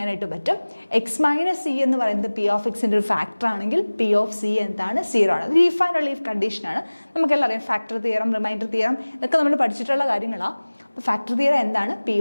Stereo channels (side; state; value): both; inverted; correlation -1.00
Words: പറ്റും. x - c എന്ന് പറയുന്നത് പി ഓഫ് എക്സിൻ്റെ ഒരു ഫാക്ടർ ആണെങ്കിൽ പി ഓഫ് സി എന്താണ്? 0 ആണ്. അത് ലീഫ് ആൻഡ് ലീഫ് കണ്ടീഷനാണ്. നമുക്കെല്ലാം അറിയാം. ഫാക്ടർ തിയറം, റിമൈൻഡർ തിയറം ഇതൊക്കെ നമ്മൾ പഠിച്ചിട്ടുള്ള കാര്യങ്ങളാണ്. ഫാക്ടർ തിയറം എന്താണ്? പി